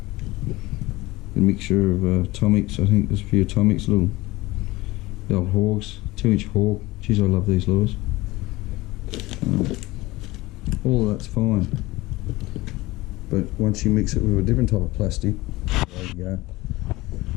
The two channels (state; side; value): quieter; right; 19.9 dB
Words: A mixture of atomics. I think there's a few atomics, little the old hogs, 2-inch hog. Geez, I love these lures. All of that's fine, but once you mix it with a different type of plastic, there you go.